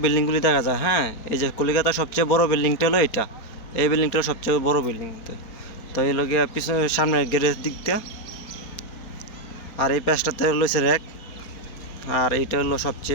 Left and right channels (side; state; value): right; late; 4.4 ms